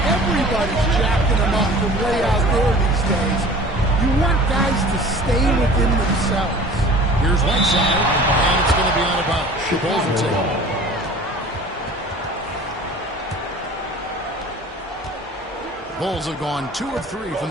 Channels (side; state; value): both; normal; correlation 0.44